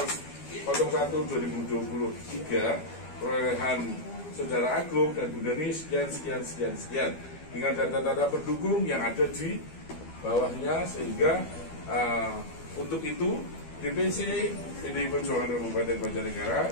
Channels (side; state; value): right; late; 12 ms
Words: 01/2023 perolehan Saudara Agung dan Bunda Ni sekian dengan data-data pendukung yang ada di bawahnya, sehingga untuk itu DPC PDI Perjuangan Kabupaten Banjarnegara